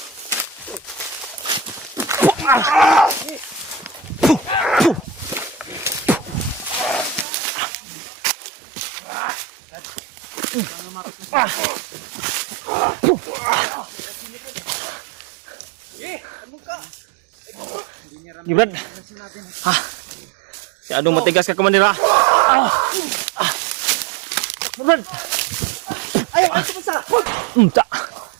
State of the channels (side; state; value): left; drops out; at 7.2 s